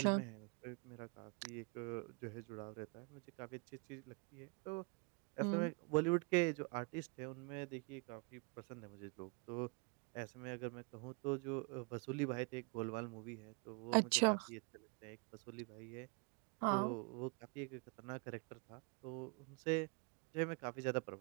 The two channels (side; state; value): left; quieter; 31.7 dB